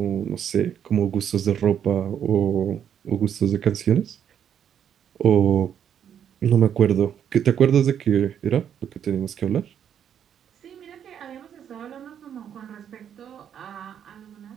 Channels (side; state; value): left; quieter; 9.0 dB